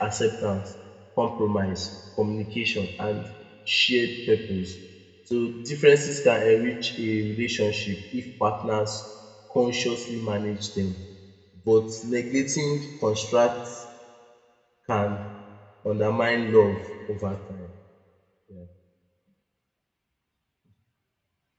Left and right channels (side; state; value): both; identical; correlation 1.00